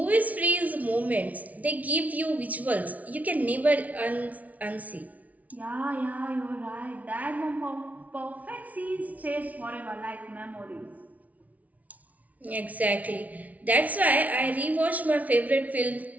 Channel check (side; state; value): left; late; 0.071 ms